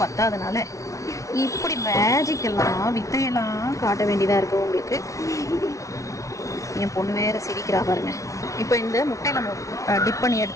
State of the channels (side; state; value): right; late; 0.15 ms